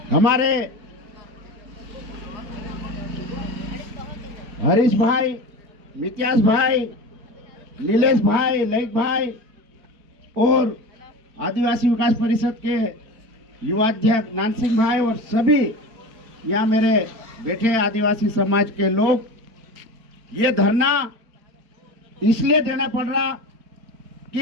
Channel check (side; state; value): left; late; 4.4 ms